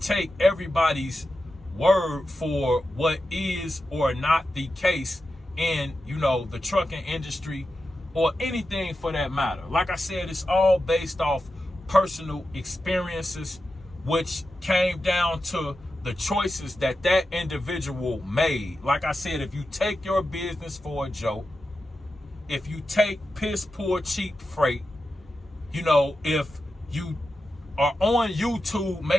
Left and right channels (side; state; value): both; normal; correlation 0.90